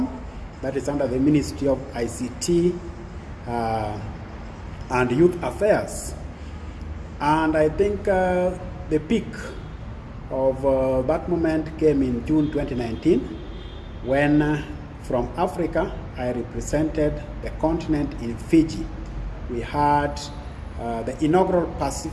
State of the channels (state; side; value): identical; both; correlation 1.00